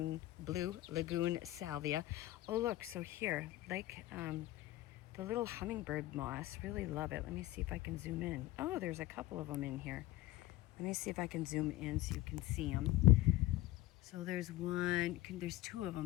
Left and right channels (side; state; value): right; quieter; 16.8 dB